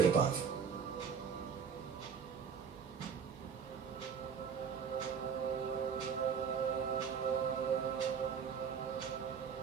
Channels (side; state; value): left; quieter; 6.6 dB